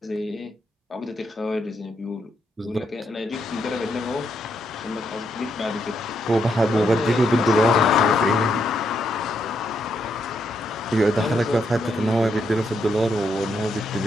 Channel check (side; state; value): both; normal; correlation 0.78